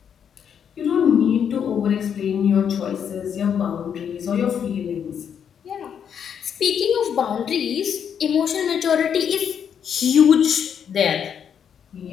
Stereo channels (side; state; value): right; quieter; 8.0 dB